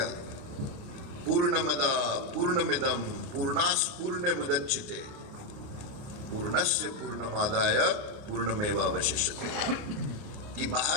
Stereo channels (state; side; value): late; left; 29 ms